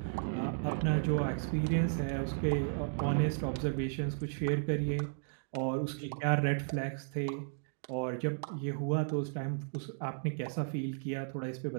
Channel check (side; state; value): left; silent; digital silence